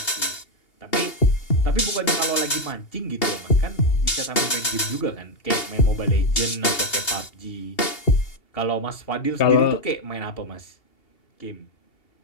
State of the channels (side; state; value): right; late; 2.8 ms